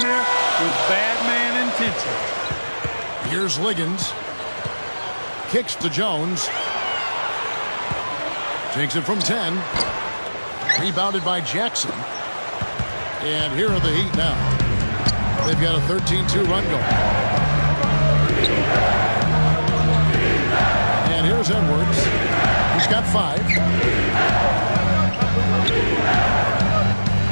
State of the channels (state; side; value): inverted; both; correlation -1.00